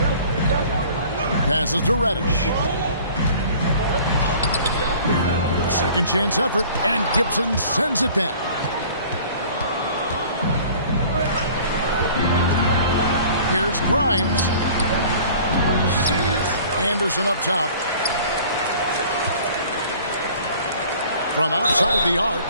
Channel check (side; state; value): both; inverted; correlation -0.48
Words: Passes to Reddish. Second chance effort, and Gibson sends it back. Here's Grimes. Anderson up top. From outside the arc.